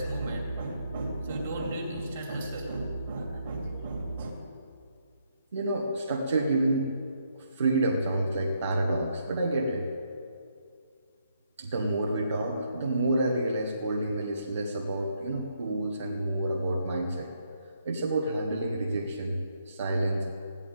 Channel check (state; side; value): inverted; both; correlation -0.75